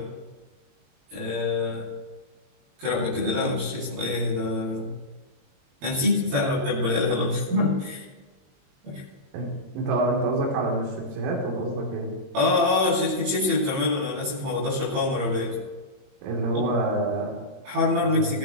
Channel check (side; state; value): left; late; 22 ms